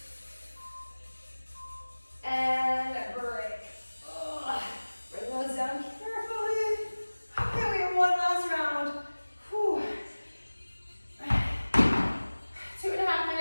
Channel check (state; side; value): inverted; both; correlation -1.00